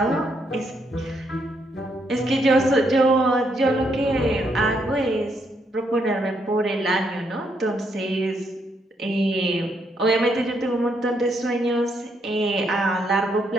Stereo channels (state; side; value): normal; both; correlation 0.75